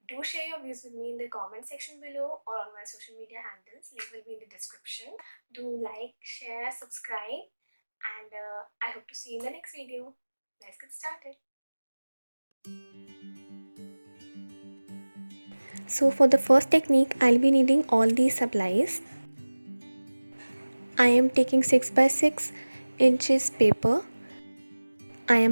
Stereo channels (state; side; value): inverted; both; correlation -1.00